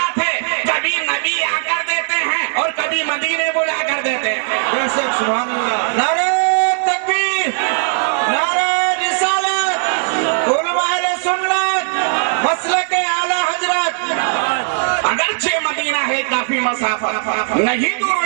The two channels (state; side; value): silent; left; 55 dB below the other